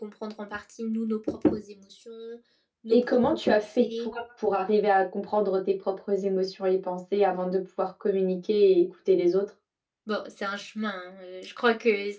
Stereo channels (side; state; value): both; identical; correlation 1.00